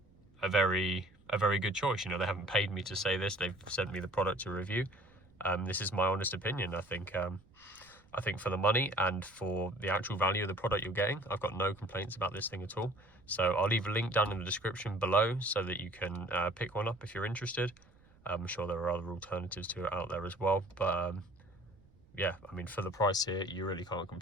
very good choice. You know, they haven't paid me to say this, they've sent me the product to review. This is my honest opinion. I think for the money and for the actual value of the product you're getting, I've got no complaints about this thing at all. So I'll leave a link down in the description below so that you can pick one up if you're interested. I'm sure there are other alternatives to it out there as well, but yeah, I mean, for the price here, you really can't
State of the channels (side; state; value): right; noise; rumble, 28 dB below the sound